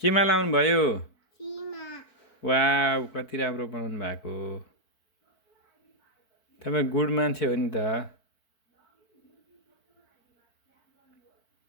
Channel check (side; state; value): right; late; 4.5 ms